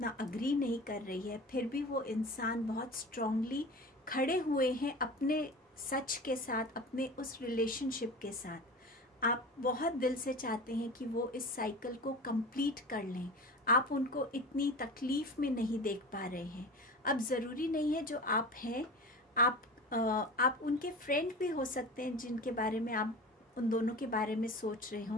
अग्री नहीं कर रही है। फिर भी वो इंसान बहुत स्ट्रांगली खड़े हुए हैं अपने सच के साथ, अपने उस रिलेशनशिप के साथ। आप बहुत दिल से चाहते हैं कि वो इस साइकिल को कंप्लीट कर लें। आप उनको इतनी तकलीफ़ में नहीं देख पा रहे हैं। अब ज़रूरी नहीं है जो आप हैं, आप उनके फ्रेंड भी हो सकते हैं जिनके बारे में आप उन दोनों के बारे में सोच रहे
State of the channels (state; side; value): normal; both; correlation 0.33